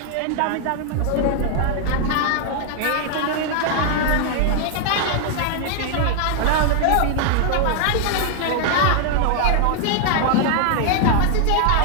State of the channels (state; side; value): different; both; correlation 0.00